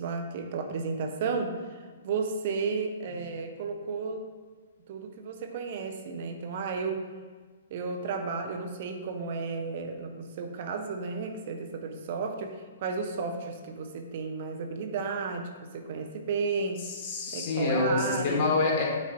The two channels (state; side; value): inverted; both; correlation -0.47